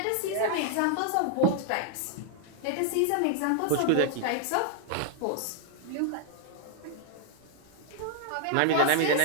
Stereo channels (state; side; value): different; both; correlation 0.00